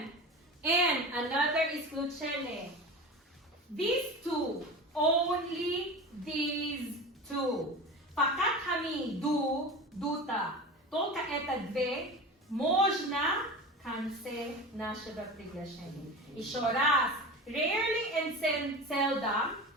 And another исключение. These two, only these two. Fakat hami дута. Только это две можно конце нашего приглашения. Еще раз. Rarely and seldom,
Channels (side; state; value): both; normal; correlation 0.30